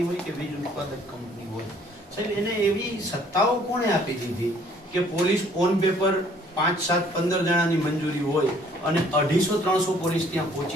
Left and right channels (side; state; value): both; normal; correlation 0.60